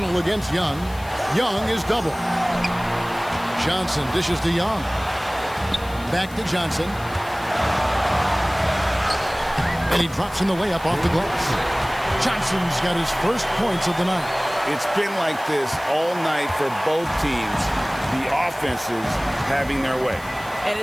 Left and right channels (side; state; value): left; noise; hiss, 21 dB below the sound